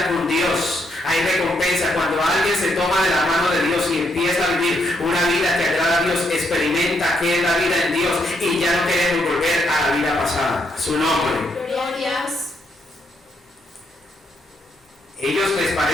con Dios. Hay recompensa cuando alguien se toma de la mano de Dios y empieza a vivir una vida que agrada a Dios, experimenta qué es la vida en Dios y ya no queremos volver a la vida pasada. Su nombre. Glorias. Ellos les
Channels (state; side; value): normal; both; correlation 0.76